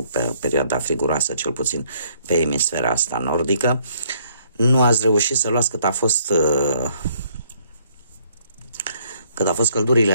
pe perioada friguroasă, cel puțin pe emisfera asta nordică. Nu ați reușit să luați cât a fost căldurile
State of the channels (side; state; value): both; inverted; correlation -0.66